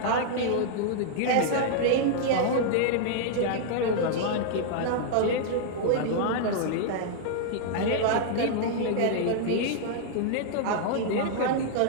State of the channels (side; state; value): both; different; correlation -0.01